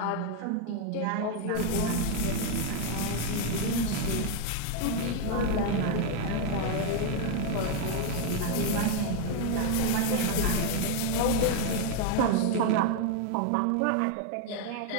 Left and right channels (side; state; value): both; different; correlation 0.01